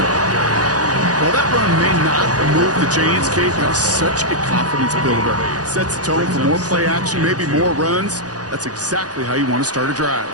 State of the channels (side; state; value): left; late; 0.68 ms